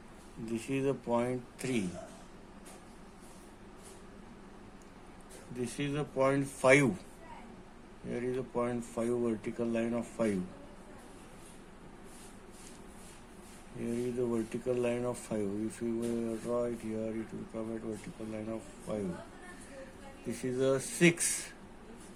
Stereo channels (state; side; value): identical; both; correlation 1.00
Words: This is the point 3. This is the point 5. Here is the point 5, vertical line of 5. Here is the vertical line of 5. If you will draw it here, it will come at vertical line of 5. This is a 6.